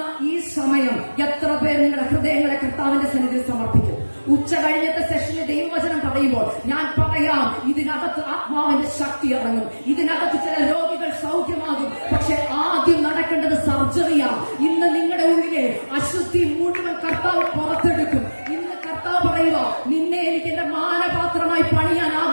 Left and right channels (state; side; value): inverted; both; correlation -1.00